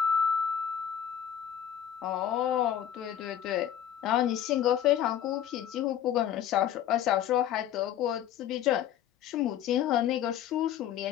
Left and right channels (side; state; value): right; quieter; 10.2 dB